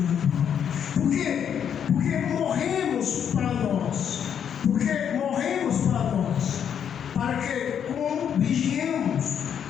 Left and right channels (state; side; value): quieter; right; 8.4 dB